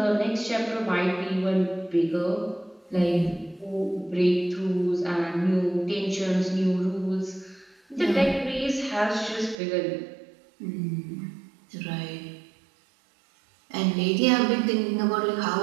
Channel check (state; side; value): drops out; left; at 9.6 s